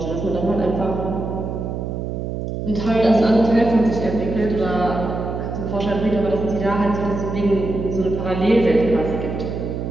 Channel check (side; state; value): right; noise; hum, 4 dB below the sound